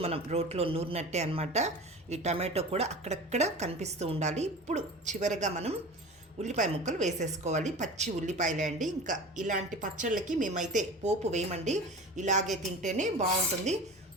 మనం రోట్లో నూరినట్టే అనమాట. ఈ టమాటో కూడా అక్కడక్కడ కనిపిస్తూ ఉండాలి. ఇప్పుడు చివరగా మనం ఉల్లిపాయ ముక్కలు వేసేసుకోవాలి. పచ్చి ఉల్లిపాయలే అండి. ఇంకా ఇలాంటి పచ్చళ్ళకి మేమైతే పోపు వేయమండి, ఇలాగే తింటేనే బాగుంటుంది.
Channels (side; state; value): both; normal; correlation 0.35